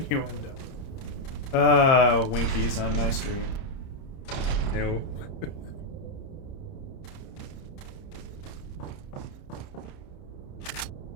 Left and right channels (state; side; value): late; right; 30 ms